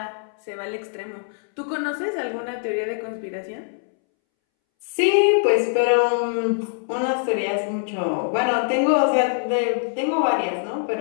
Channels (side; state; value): right; silent; 63 dB below the other